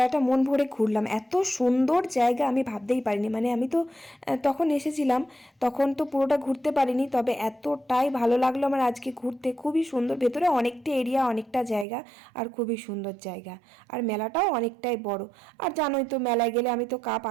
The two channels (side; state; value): left; drops out; at 11.9 s